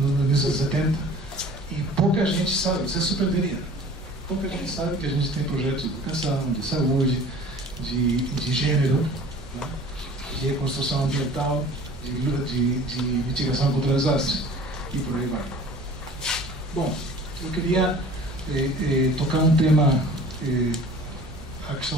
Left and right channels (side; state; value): both; normal; correlation 0.45